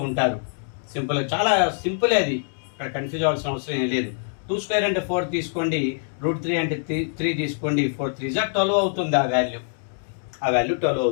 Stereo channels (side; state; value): right; silent; digital silence